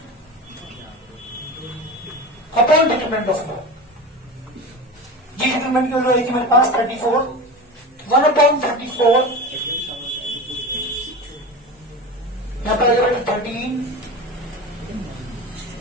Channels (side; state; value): both; normal; correlation 0.28